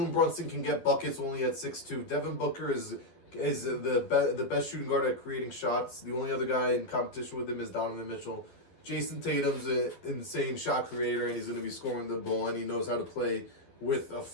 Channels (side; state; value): right; late; 11 ms